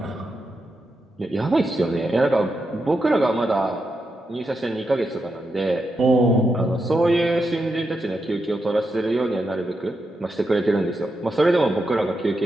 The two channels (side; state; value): both; normal; correlation 0.85